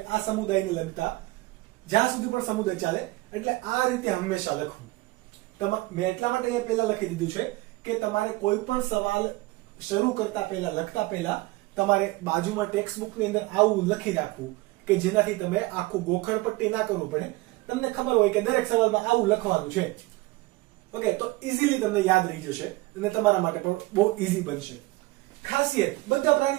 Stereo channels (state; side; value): quieter; left; 20.9 dB